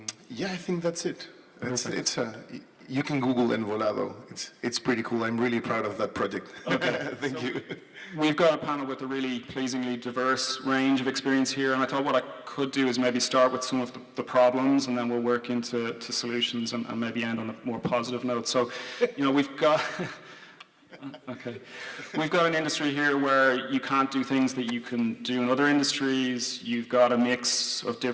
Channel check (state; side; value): identical; both; correlation 1.00